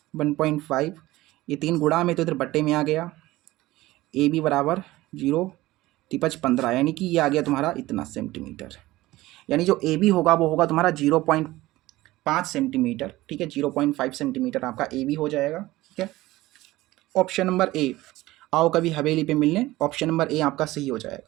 1.5, ये 3 गुणा में तो इधर बट्टे में आ गया, AB बराबर 0 तिपच 15, यानी कि ये आ गया तुम्हारा इतना सेंटीमीटर, यानी जो AB होगा वो होगा तुम्हारा 0.5 सेंटीमीटर, ठीक है, 0.5 सेंटीमीटर आपका AB हो जाएगा, ठीक है। Option number A. आओ कभी हवेली पे मिलने, ऑप्शन नंबर ए आपका सही हो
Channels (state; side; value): quieter; left; 17.8 dB